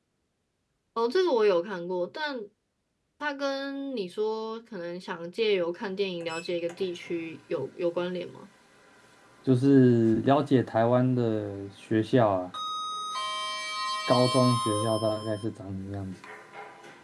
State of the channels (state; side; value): identical; both; correlation 1.00